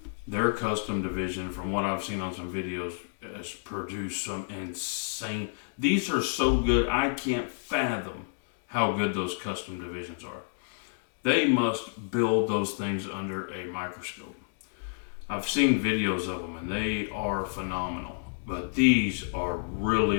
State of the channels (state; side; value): silent; right; digital silence